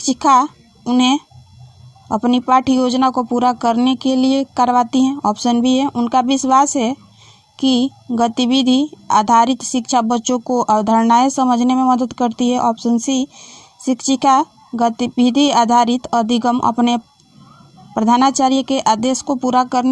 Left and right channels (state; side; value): identical; both; correlation 1.00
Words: उन्हें अपनी पाठ्य योजना को पूरा करने के लिए करवाती हैं। ऑप्शन बी है उनका विश्वास है कि गतिविधि आधारित शिक्षा बच्चों को अवधारणाएं समझने में मदद करती है। ऑप्शन सी शिक्षिका गतिविधि आधारित अधिगम अपने प्रधानाचार्य के आदेश को पूरा